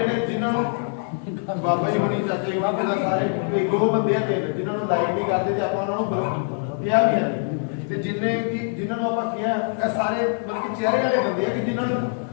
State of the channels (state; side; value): silent; right; 57 dB below the other